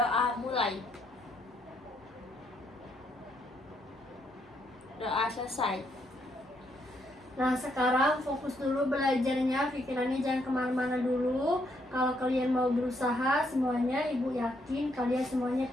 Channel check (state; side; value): normal; both; correlation 0.74